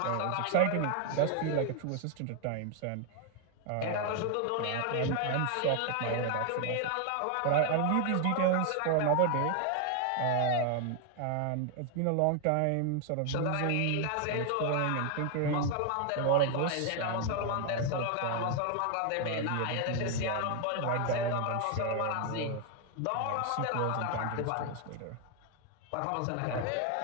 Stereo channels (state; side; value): different; both; correlation 0.01